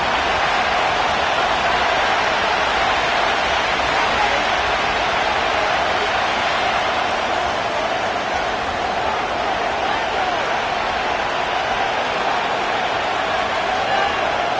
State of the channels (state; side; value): identical; both; correlation 1.00